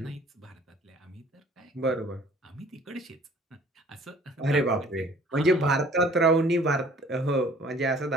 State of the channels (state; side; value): normal; both; correlation 0.53